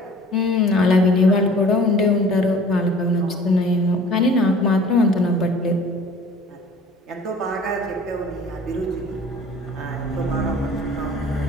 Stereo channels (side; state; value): both; normal; correlation 0.48